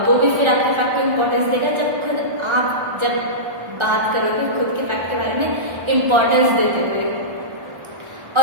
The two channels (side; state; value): left; late; 1.3 ms